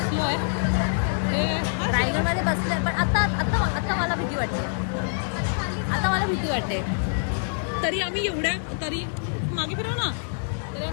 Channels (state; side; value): silent; right; 61 dB below the other